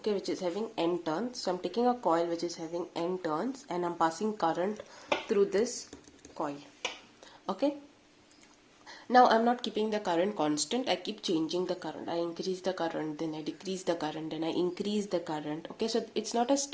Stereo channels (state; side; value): identical; both; correlation 1.00